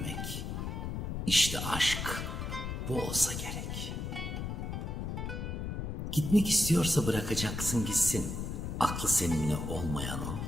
işte aşk bu olsa gerek. Gitmek istiyorsa bırakacaksın gitsin, aklı seninle olmayanın,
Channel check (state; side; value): noise; left; rumble, 4 dB below the sound